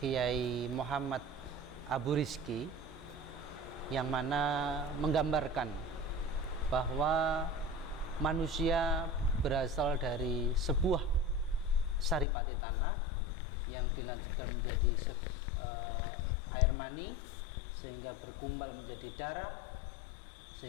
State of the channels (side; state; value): right; drops out; at 12.2 s